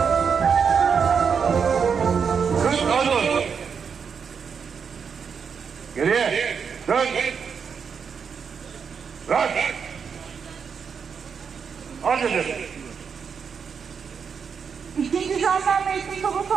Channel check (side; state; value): left; quieter; 6.4 dB